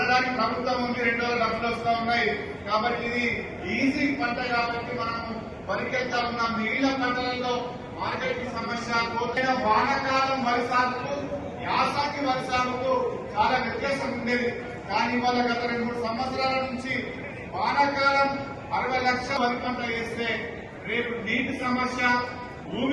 ప్రభుత్వం ఉంది, 2 డబ్బులు వస్తా ఉన్నాయి. కాబట్టి ఇది ఈజీ పంట కాబట్టి మనం వరికి వెళ్తా ఉన్నాం. మిగిలిన పంటలలో మార్కెట్ సమస్య, కోతైన వానాకాలం వరి సాగుకు యాసంగి వరి సాగుకు చాలా వ్యత్యాసం ఉండేది. కానీ ఇవాళ గత 2-3 సంవత్సరాల నుంచి వానాకాలం 60 లక్షల వరి పంట వేస్తే రేపు నీటి సమస్య,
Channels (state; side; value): identical; both; correlation 1.00